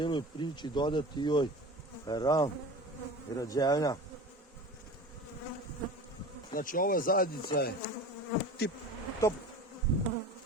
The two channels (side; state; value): both; normal; correlation 0.35